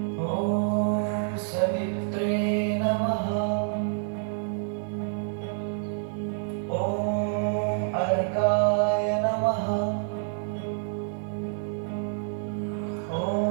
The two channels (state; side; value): silent; left; 60 dB below the other